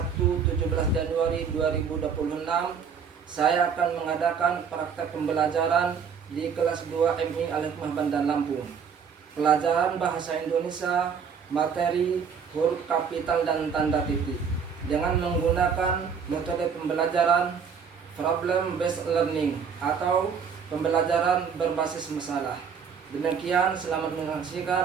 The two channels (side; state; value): left; quieter; 6.5 dB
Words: 17 Januari 2026, saya akan mengadakan praktek pembelajaran di kelas 2 MI Al-Hikmah Bandar Lampung. Pelajaran bahasa Indonesia, materi huruf kapital dan tanda titik, dengan menggunakan metode pembelajaran problem based learning atau pembelajaran berbasis masalah. Demikian, selamat